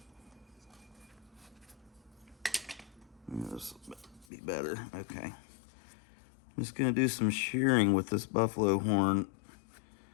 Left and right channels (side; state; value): right; drops out; at 4.2 s